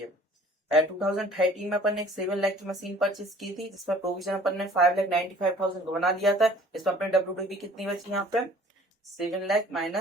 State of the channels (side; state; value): both; normal; correlation 0.52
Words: 2013 में अपन ने एक 7 लाख की मशीन परचेज की थी, जिसमें प्रोविजन अपन ने 5,95,000 का बना लिया था, इसमें अपने डब्ल्यूडीवी कितनी बची यहाँ पे 7 लाख